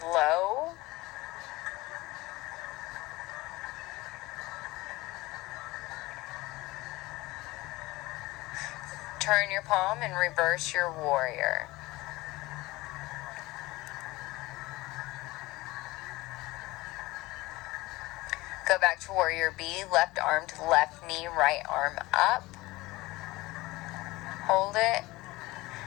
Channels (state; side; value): quieter; right; 20.2 dB